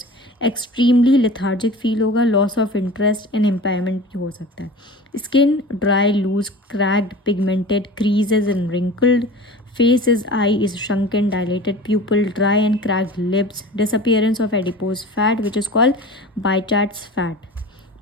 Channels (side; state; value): both; normal; correlation 0.38